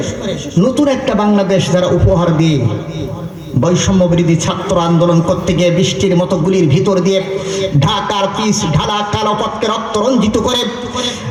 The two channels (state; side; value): identical; both; correlation 1.00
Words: নতুন একটা বাংলাদেশ যারা উপহার দিয়ে বৈষম্য বিরোধী ছাত্র আন্দোলন করতে গিয়ে বৃষ্টির মতো গুলির ভিতর দিয়ে ঢাকার পিচ ঢালা কালো পথকে রক্ত রঞ্জিত করে